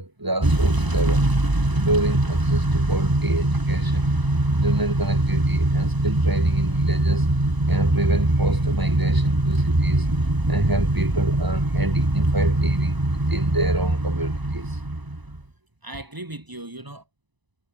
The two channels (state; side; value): late; left; 1.0 ms